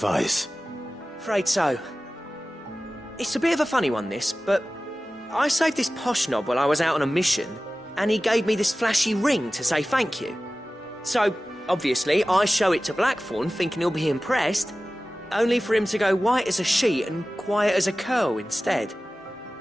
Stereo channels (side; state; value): both; normal; correlation 0.96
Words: afraid so. It's a bit of a funny one, this, but I saved this posh knob while I was out on a mission, and he gave me this flashy ring to say thank you. So, obviously, I show it to Blackthorn, thinking he'll be impressed, only for him to go white as a sheet and quiet as a curl instead.